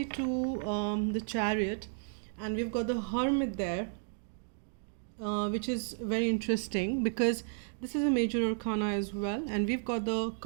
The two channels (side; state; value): left; silent; digital silence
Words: to the Chariot, and we've got the Hermit there, which is very interesting because this is a major arcana as well. And we've got the